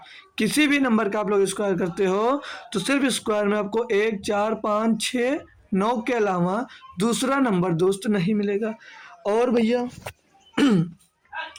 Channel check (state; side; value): identical; both; correlation 1.00